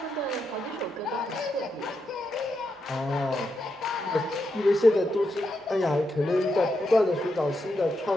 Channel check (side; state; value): both; normal; correlation 0.84